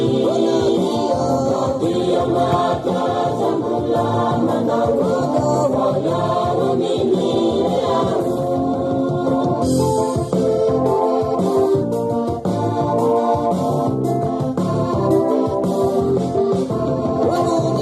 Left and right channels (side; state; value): both; identical; correlation 1.00